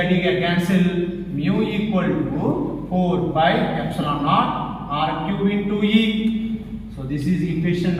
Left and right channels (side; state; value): both; identical; correlation 1.00